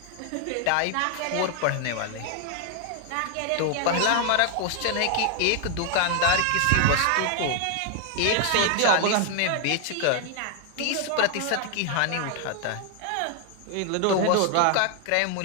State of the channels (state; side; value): different; both; correlation 0.00